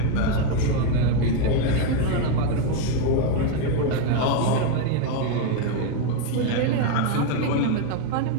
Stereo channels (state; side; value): different; both; correlation 0.01